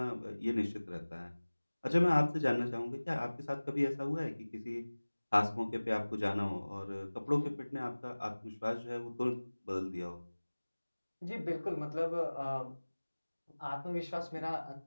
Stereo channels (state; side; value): inverted; both; correlation -1.00